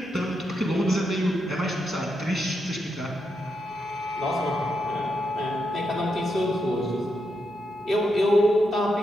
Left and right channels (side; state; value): both; normal; correlation 0.83